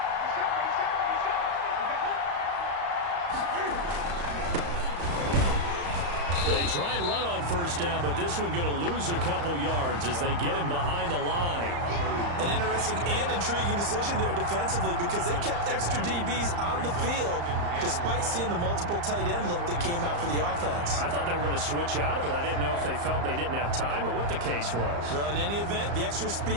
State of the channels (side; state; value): left; late; 35 ms